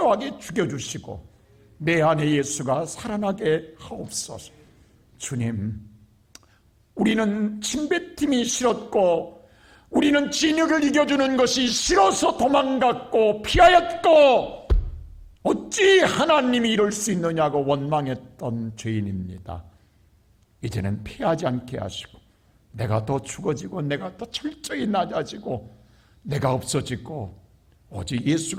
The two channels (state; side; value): identical; both; correlation 1.00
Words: 죽여주시고 내 안에 예수가 살아나게 하옵소서. 주님, 우리는 침뱉음이 싫었고 우리는 진흙을 이겨주는 것이 싫어서 도망갔고 피하였고 어찌 하나님이 이럴 수 있느냐고 원망했던 죄인입니다. 이제는 피하지 않게 하시고 내가 더 죽어지고 내가 더 철저히 낮아지고 내가 없어지고 오직